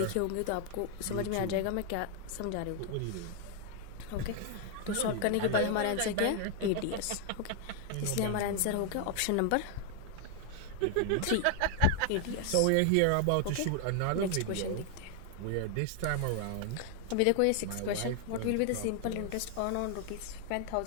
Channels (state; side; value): different; both; correlation 0.00